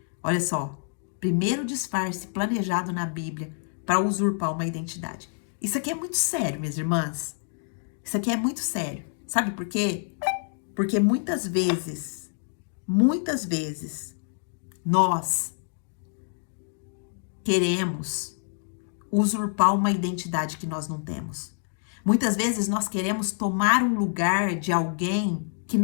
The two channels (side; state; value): right; silent; digital silence